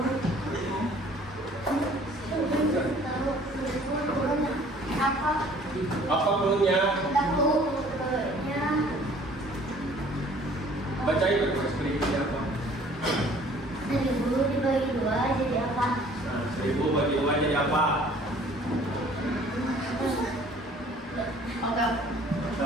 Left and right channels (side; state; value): both; normal; correlation 0.54